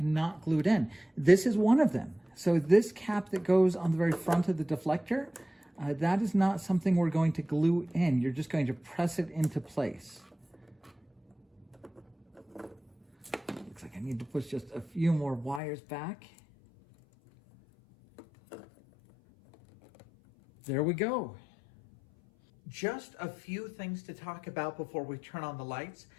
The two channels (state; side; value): drops out; right; at 15.6 s